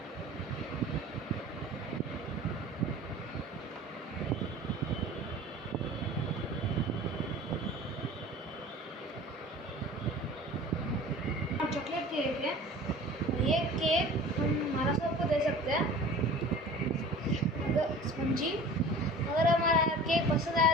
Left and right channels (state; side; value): normal; both; correlation 0.42